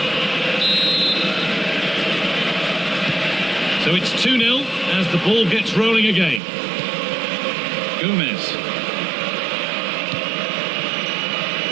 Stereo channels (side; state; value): left; drops out; at 6.4 s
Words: So it's 2-0 as the ball gets rolling again. Gomez.